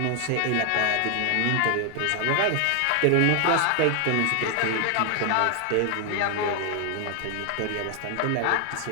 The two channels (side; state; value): both; different; correlation 0.00